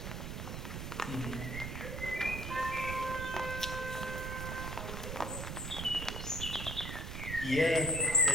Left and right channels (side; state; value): right; noise; rumble, 5 dB below the sound